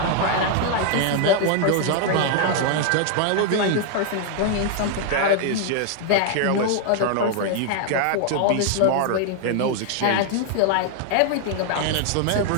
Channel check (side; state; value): both; different; correlation 0.00